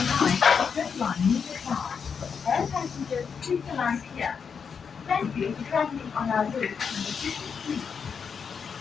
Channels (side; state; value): right; quieter; 6.3 dB